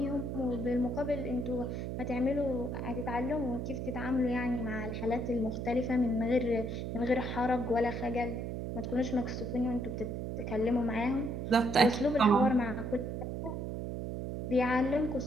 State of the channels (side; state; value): right; noise; hum, 4 dB below the sound